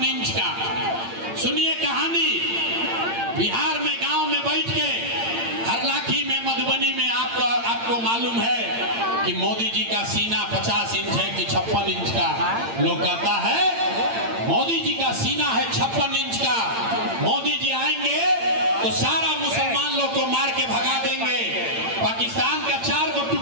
इंच का। सुनिए कहानी, बिहार में गांव में बैठ के, हरलाखी में, मधुबनी में आपको मालूम है कि मोदी जी का सीना 50 इंच है कि 56 इंच का। लोग कहता है मोदी जी का सीना है 56 इंच का, मोदी जी आएंगे तो सारा मुसलमान लोग को मार के भगा देंगे, पाकिस्तान का 4 को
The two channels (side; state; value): left; late; 8.8 ms